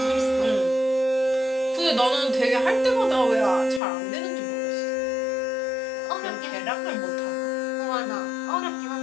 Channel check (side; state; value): right; drops out; at 3.8 s